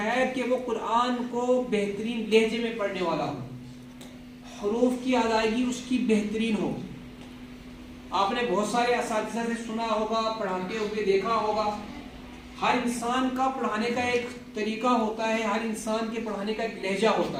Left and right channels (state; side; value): identical; both; correlation 1.00